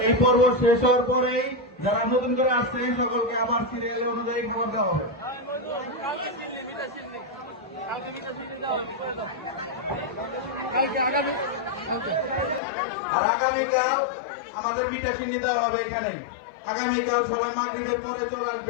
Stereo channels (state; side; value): drops out; right; at 12.6 s